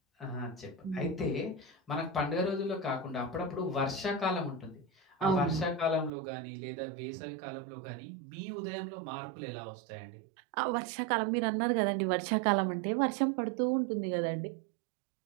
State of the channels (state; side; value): drops out; left; at 6.1 s